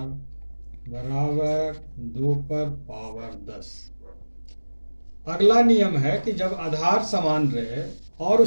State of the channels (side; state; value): both; inverted; correlation -1.00